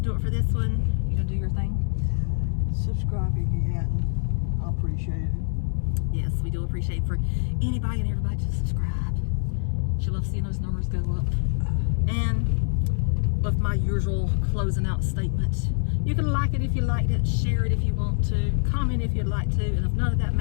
it for this one. You going to do your thing? Subscribe if you hadn't. I appreciate it. Yes, we do appreciate for anybody and everybody to subscribe. She loves seeing those numbers go up. And with my usual closing out statement, you can like it if you liked it, share it if you want to, comment if you'd like to, and if none of that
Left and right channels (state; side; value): silent; right; digital silence